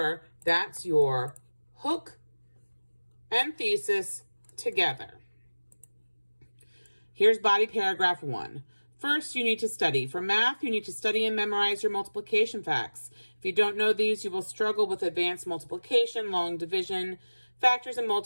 that's your hook and thesis together. Here's body paragraph 1. First, you need to study. For math, you need to study and memorize your multiplication facts. If you don't know these, you will struggle with advanced multiplication, long division, factors and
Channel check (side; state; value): both; inverted; correlation -1.00